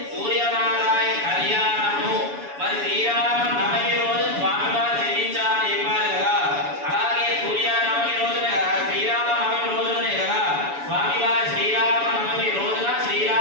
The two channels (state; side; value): late; left; 7.0 ms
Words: సూర్యనారాయణ కళ్యాణము. మరి శ్రీరామ నవమి రోజు స్వామివారు జయించాలని చెప్పారు కదా. అలాగే సూర్యనవమి రోజునే కదా, శ్రీరామ నవమి రోజునే కదా స్వామివారి శ్రీరామ నవమి రోజున